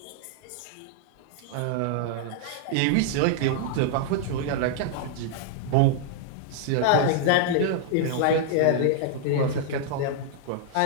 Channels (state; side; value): different; both; correlation -0.01